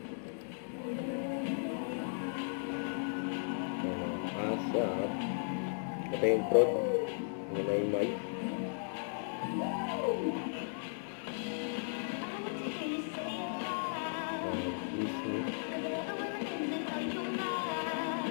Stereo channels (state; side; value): silent; right; 54 dB below the other